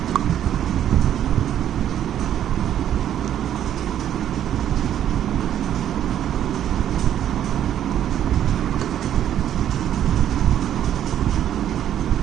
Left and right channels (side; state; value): left; quieter; 10.7 dB